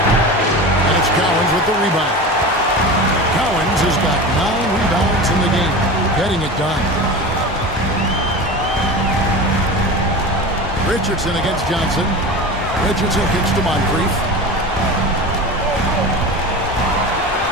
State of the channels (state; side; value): normal; both; correlation 0.30